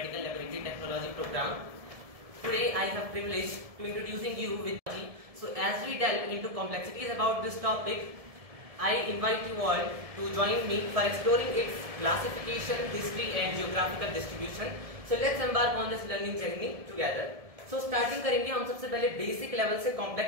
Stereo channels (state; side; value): late; left; 1.7 ms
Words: Laboratory Technology program. Today I have privilege to introducing you with technology. So as we delve into complexities about this topic, I invite you all to join me for exploring its classification, history and geographical distribution. So let's embark on this learning journey together. So starting करेंगे हम सबसे पहले basic level से